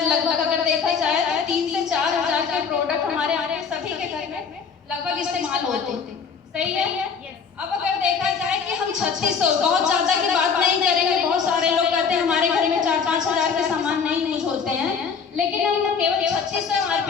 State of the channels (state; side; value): quieter; right; 6.0 dB